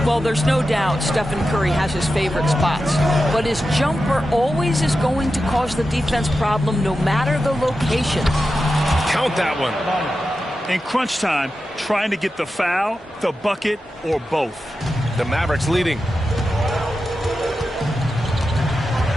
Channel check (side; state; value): both; normal; correlation 0.91